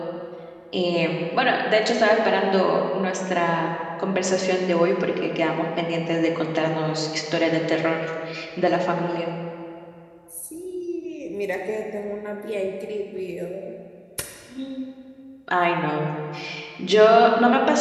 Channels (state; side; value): identical; both; correlation 1.00